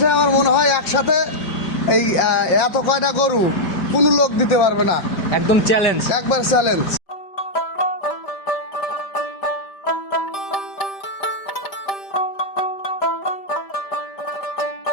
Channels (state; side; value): late; right; 5.6 ms